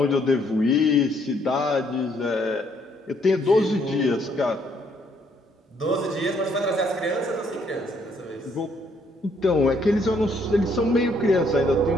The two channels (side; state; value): both; normal; correlation 0.69